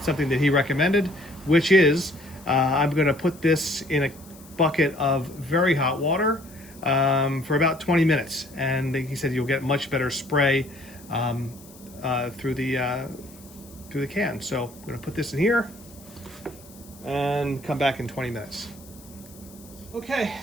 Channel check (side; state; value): left; noise; hiss, 22 dB below the sound